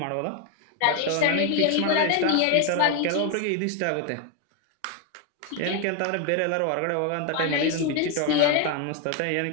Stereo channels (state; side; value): different; both; correlation 0.01